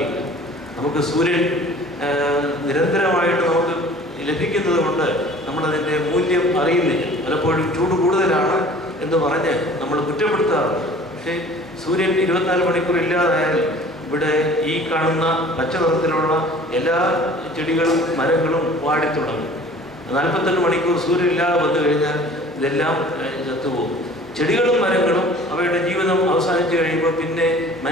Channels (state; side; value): normal; both; correlation 0.47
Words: നമുക്ക് സൂര്യൻ നിരന്തരമായിട്ട് നമുക്ക് ലഭിക്കുന്നത് കൊണ്ട് നമ്മളതിൻ്റെ മൂല്യം അറിയുന്നില്ല. പലപ്പോഴും ചൂട് കൂടുതലാണ് എന്ന് പറഞ്ഞ് നമ്മൾ കുറ്റപ്പെടുത്താറുണ്ട്. പക്ഷേ സൂര്യൻ 24 മണിക്കൂർ ഇല്ലാതായാൽ ഇവിടെ ഈ കാണുന്ന പച്ച നിറത്തിലുള്ള എല്ലാ ചെടികളും മരങ്ങളും വാടിത്തുടങ്ങും. 48 മണിക്കൂർ സൂര്യൻ ഇല്ലാതെ വന്നു കഴിഞ്ഞാൽ ഇതെല്ലാം ചത്തുപോകും. ചെടികളും മരങ്ങളും അവയുടെ ജീവിതം അവസാനിച്ച് കഴിയുമ്പോൾ പിന്നെ